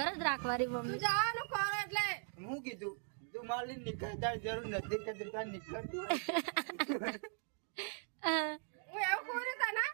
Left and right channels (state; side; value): silent; left; 51 dB below the other